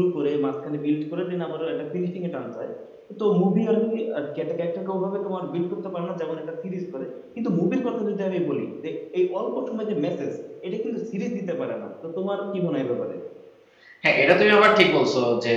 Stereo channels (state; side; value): identical; both; correlation 1.00